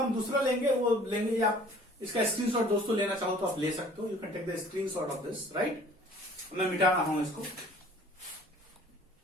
दूसरा लेंगे, वो लेंगे, आप इसका स्क्रीनशॉट दोस्तों लेना चाहो तो आप ले सकते हो, you can take the screenshot of this, right. मैं मिटा रहा हूं इसको।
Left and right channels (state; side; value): normal; both; correlation 0.51